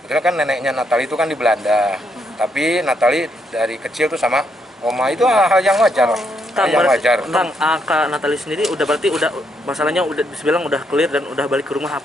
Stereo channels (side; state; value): both; normal; correlation 0.76